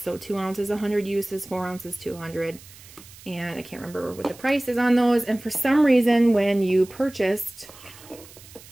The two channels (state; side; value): noise; right; hiss, 20 dB below the sound